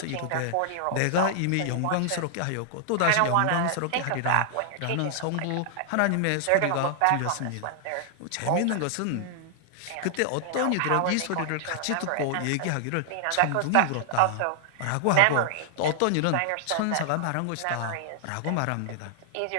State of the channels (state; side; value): different; both; correlation -0.01